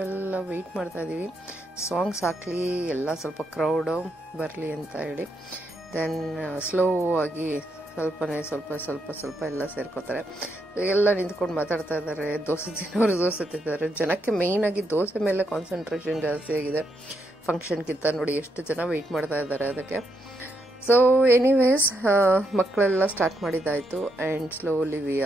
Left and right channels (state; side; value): normal; both; correlation 0.79